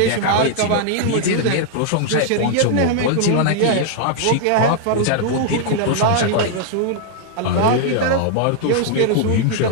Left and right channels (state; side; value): different; both; correlation 0.00